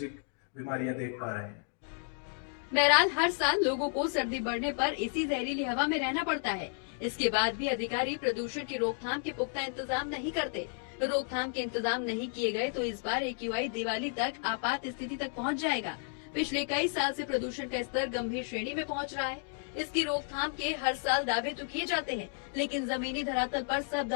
बीमारियां देख पा रहे हैं। बहरहाल हर साल लोगों को सर्दी बढ़ने पर इसी जहरीली हवा में रहना पड़ता है। इसके बाद भी अधिकारी प्रदूषण की रोकथाम के पुख्ता इंतजाम नहीं करते। रोकथाम के इंतजाम नहीं किए गए तो इस बार AQI दिवाली तक आपात स्थिति तक पहुंच जाएगा। पिछले कई साल से प्रदूषण का स्तर गंभीर श्रेणी में पहुंच रहा है। इसकी रोकथाम के हर साल दावे तो किए जाते हैं, लेकिन जमीनी धरातल पर सब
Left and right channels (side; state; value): right; silent; 56 dB below the other